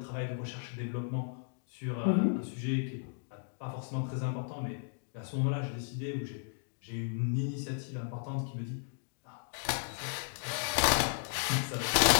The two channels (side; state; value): right; silent; digital silence